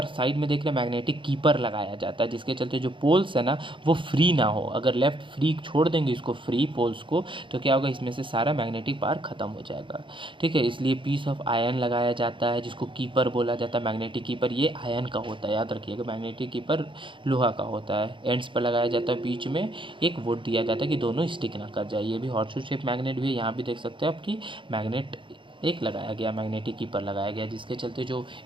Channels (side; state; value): left; late; 0.24 ms